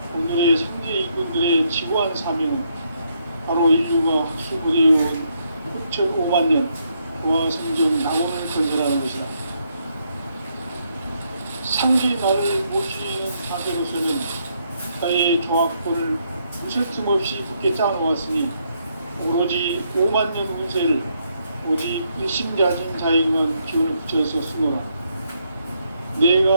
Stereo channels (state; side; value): inverted; both; correlation -0.75